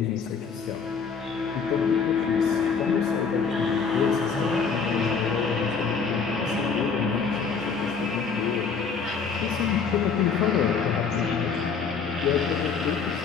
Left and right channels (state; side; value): quieter; right; 5.7 dB